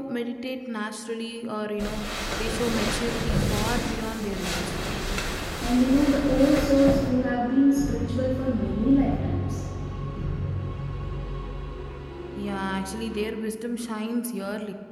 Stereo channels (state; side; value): identical; both; correlation 1.00